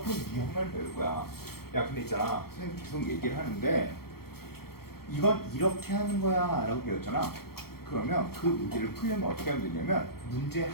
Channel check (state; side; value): late; right; 0.94 ms